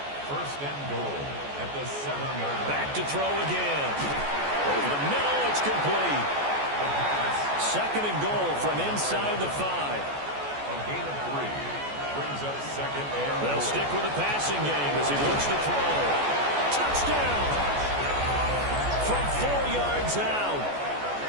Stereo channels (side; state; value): left; late; 14 ms